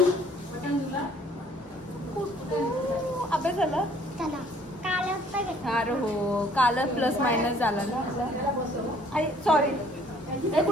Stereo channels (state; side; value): normal; both; correlation 0.59